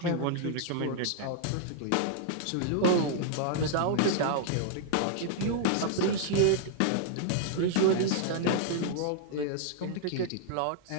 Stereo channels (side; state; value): both; different; correlation 0.00